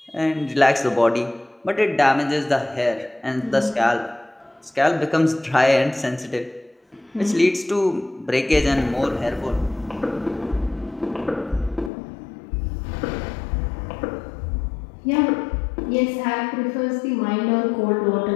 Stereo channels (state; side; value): drops out; right; at 11.9 s